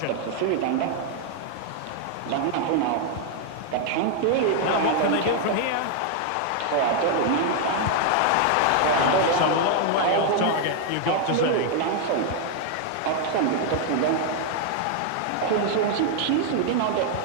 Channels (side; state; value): both; different; correlation 0.00